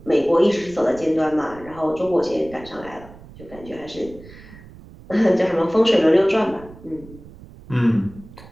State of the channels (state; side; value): noise; right; rumble, 19 dB below the sound